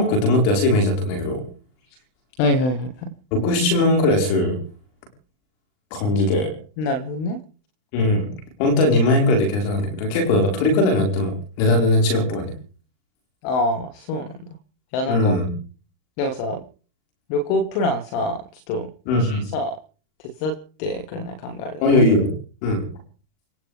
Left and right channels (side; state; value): right; late; 39 ms